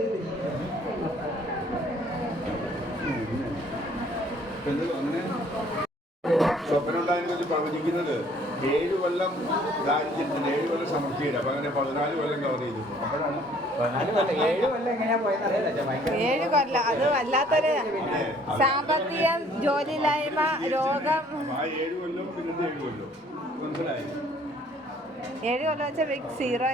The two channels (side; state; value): both; normal; correlation 0.58